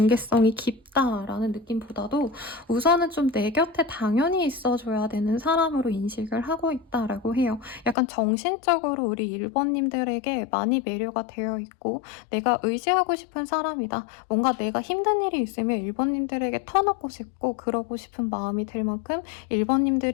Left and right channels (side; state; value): right; drops out; at 8.0 s